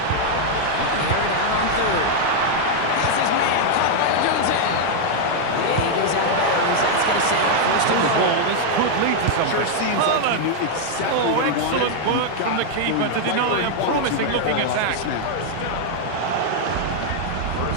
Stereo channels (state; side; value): different; both; correlation 0.00